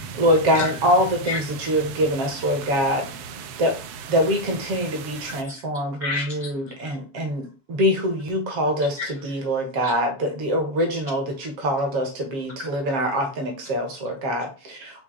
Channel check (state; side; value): late; left; 7.1 ms